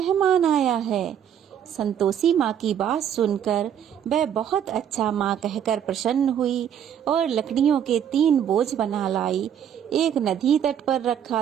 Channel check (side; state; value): left; quieter; 9.2 dB